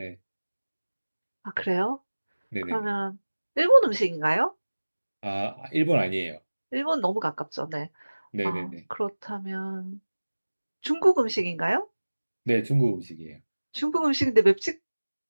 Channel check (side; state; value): both; inverted; correlation -1.00